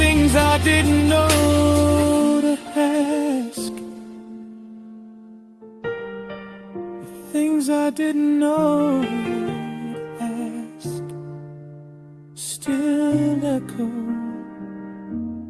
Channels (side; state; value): both; identical; correlation 1.00